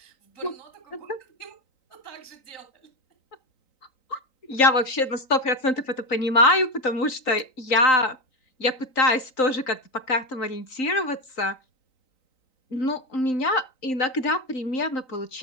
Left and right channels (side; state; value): right; late; 3.9 ms